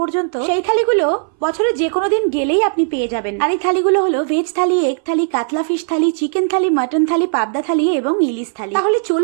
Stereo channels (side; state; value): left; silent; 62 dB below the other